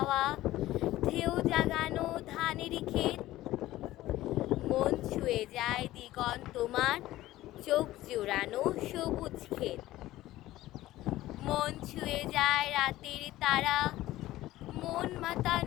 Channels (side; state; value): right; quieter; 15.9 dB